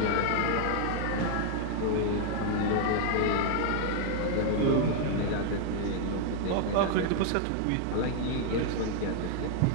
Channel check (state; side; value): different; both; correlation 0.00